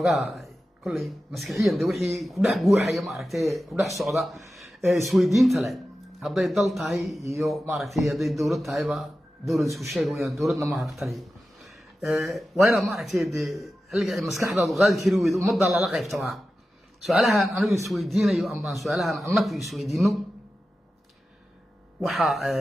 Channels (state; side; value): normal; both; correlation 0.93